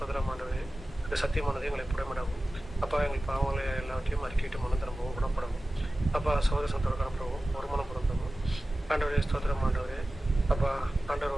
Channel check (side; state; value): both; normal; correlation 0.96